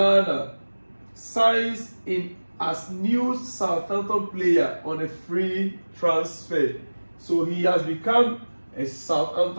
signs in as new Southampton player on a free transfer. So he has become a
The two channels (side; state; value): both; inverted; correlation -1.00